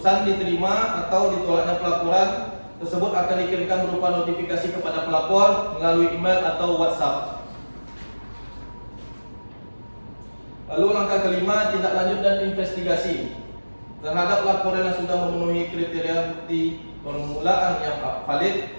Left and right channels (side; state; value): both; inverted; correlation -1.00